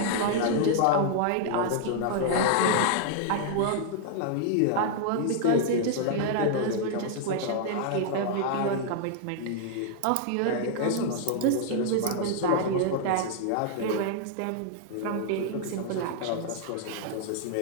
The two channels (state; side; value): different; both; correlation -0.01